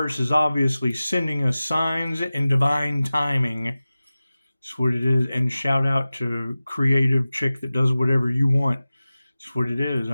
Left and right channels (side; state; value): both; inverted; correlation -0.97